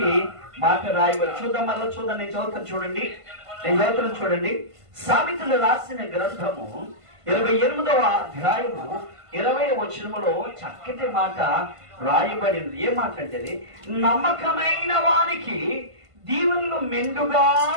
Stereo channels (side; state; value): left; late; 1.5 ms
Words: మాట రాయబడి. చూద్దాం, మరలా చూద్దాం. నేను చదువుతాను చూడండి. సామెతలు రాసిన గ్రంథము 28వ అధ్యాయము 20వ వచనములో చక్కటి మాట రాయబడింది. ఏ మాట అంటే, నమ్మకమైన వానికి దీవెనలు మెండుగా